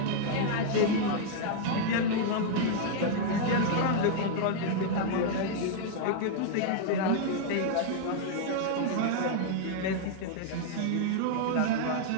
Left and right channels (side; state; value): both; different; correlation 0.00